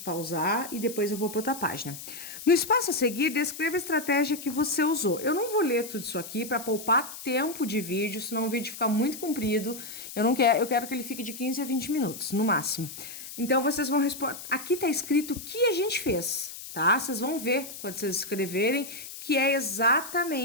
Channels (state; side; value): noise; left; hiss, 12 dB below the sound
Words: e depois eu vou para outra página. No espaço a seguir, descreva a estratégia que você usou. Eu não vou ler tudo isso aqui para poupar tempo de vídeo, senão o vídeo fica muito comprido. Eu quero que ele fique de 15 a 20 minutos, no máximo. Então, vocês vão responder. Aqui tá escrito o que a gente fez, tá? Vocês vão ver quando vocês escreverem que é